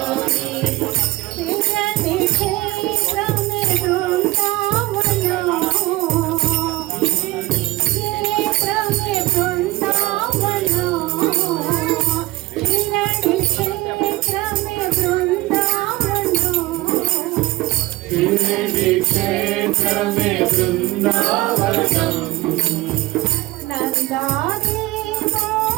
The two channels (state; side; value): quieter; left; 19.6 dB